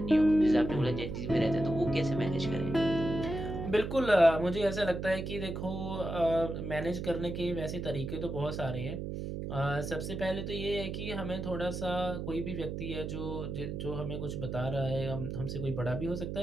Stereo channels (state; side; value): noise; right; hum, 5 dB below the sound